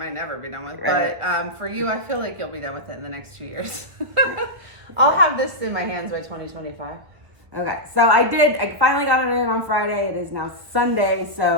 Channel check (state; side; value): late; left; 1.4 ms